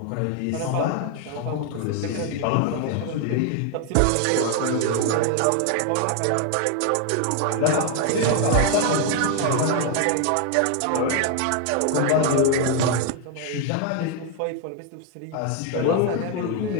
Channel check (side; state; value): both; different; correlation 0.01